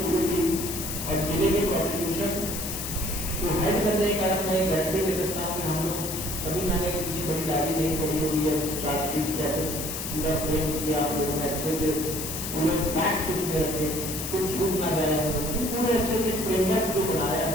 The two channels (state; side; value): noise; left; hiss, 5 dB below the sound